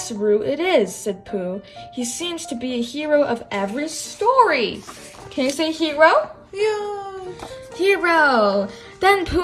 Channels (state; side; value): identical; both; correlation 1.00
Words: Roo, it is, said Pooh. He seems to be a hero of every story. Can you say hero? Yeah. Hero. Then